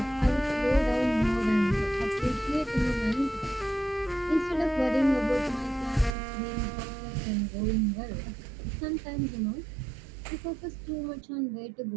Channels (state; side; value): drops out; left; at 6.1 s